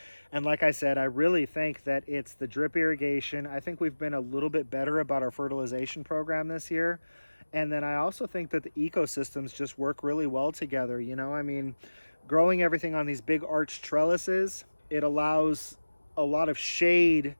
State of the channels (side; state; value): both; inverted; correlation -1.00